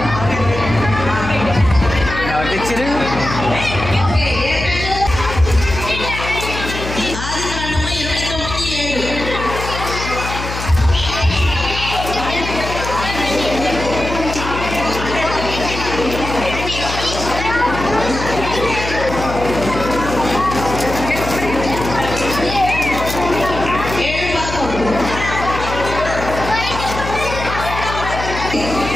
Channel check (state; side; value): noise; left; hum, 7 dB below the sound